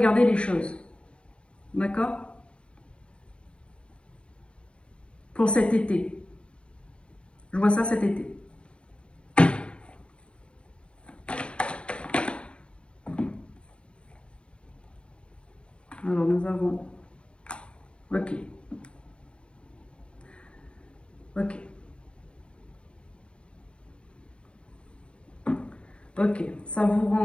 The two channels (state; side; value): late; right; 0.055 ms